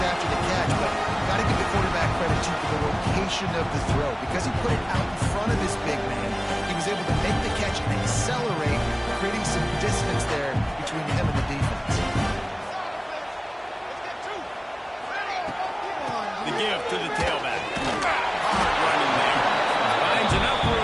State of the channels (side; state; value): both; identical; correlation 1.00